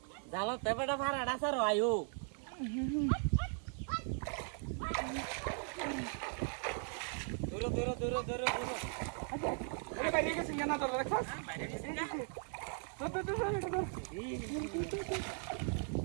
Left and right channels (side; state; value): left; silent; 52 dB below the other